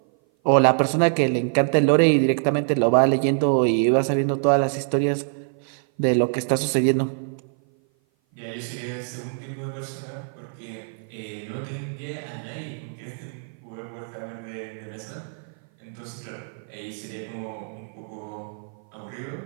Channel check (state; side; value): silent; left; 56 dB below the other